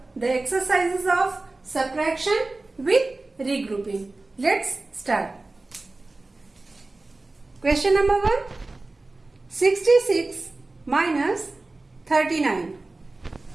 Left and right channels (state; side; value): quieter; left; 3.2 dB